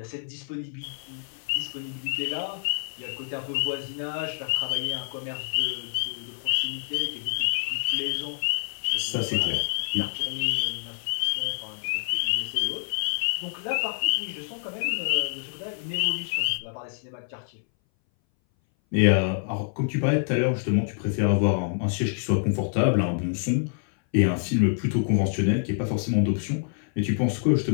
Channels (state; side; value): silent; right; 59 dB below the other